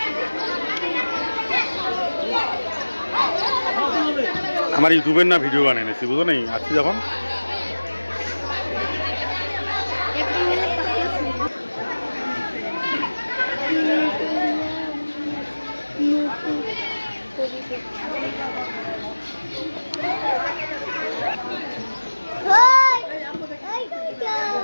আমার ইউটিউবের না ভিডিও বানিয়ে নিয়েছি, বুঝো নেই আসছি যখন।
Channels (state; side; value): inverted; both; correlation -1.00